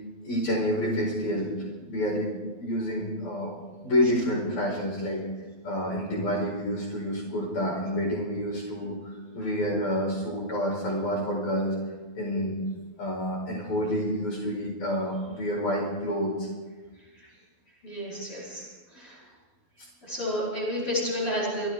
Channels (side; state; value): right; late; 12 ms